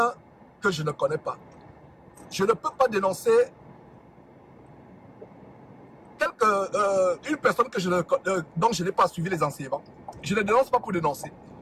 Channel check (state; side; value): identical; both; correlation 1.00